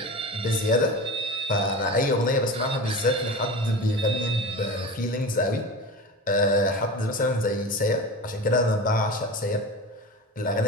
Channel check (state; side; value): normal; both; correlation 0.30